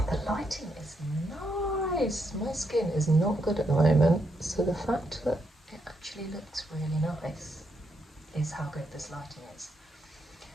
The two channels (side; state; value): both; normal; correlation 0.79